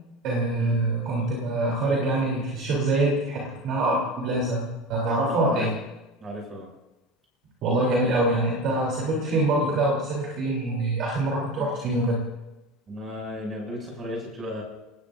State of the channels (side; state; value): both; normal; correlation 0.28